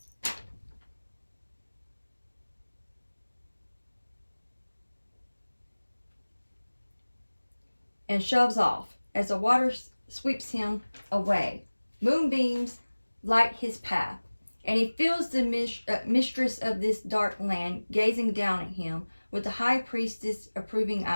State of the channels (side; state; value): both; inverted; correlation -1.00